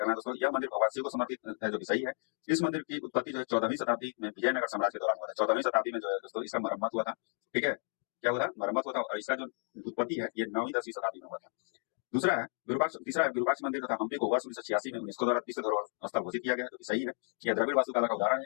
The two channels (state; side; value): silent; right; 56 dB below the other